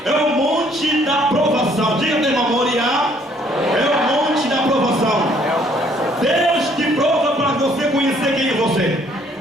é o monte da provação. Diga para o irmão: Moriá é o monte da provação. Deus te prova para você conhecer quem é você.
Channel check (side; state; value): both; normal; correlation 0.63